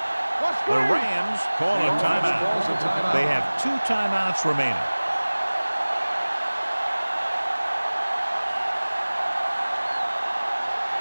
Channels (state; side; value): inverted; both; correlation -1.00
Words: The Rams call a timeout. They have 2 timeouts remaining.